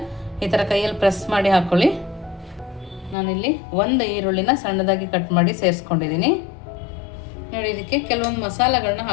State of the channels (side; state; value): right; drops out; at 3.2 s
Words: ಈ ಥರ ಕೈಯಲ್ಲಿ ಪ್ರೆಸ್ ಮಾಡಿ ಹಾಕ್ಕೊಳ್ಳಿ. ನಾನಿಲ್ಲಿ 1 ಈರುಳ್ಳಿನ ಸಣ್ಣದಾಗಿ ಕಟ್ ಮಾಡಿ ಸೇರಿಸ್ಕೊಂಡಿದ್ದೀನಿ. ನೋಡಿ, ಇದಕ್ಕೆ ಕೆಲವೊಂದು ಮಸಾಲೆಗಳನ್ನ